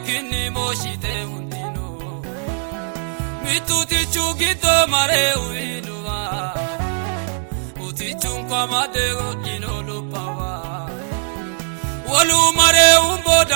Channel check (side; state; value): left; silent; digital silence